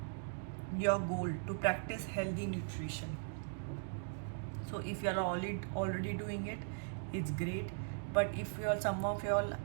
Your goal to practice healthy nutrition. So if you are already doing it, it's great. But if you are, some of you all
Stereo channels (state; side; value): silent; left; digital silence